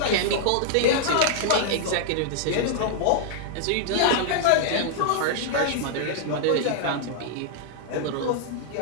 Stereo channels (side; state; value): both; different; correlation -0.01